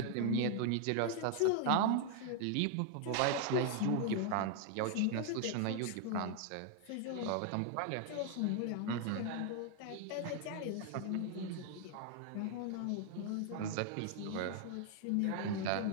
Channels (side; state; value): both; different; correlation 0.00